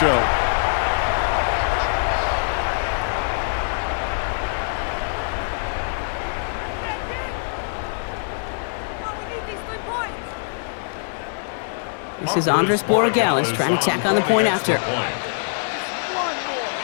This is Andres Borregales trying to tack on the point after.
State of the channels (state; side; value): silent; right; digital silence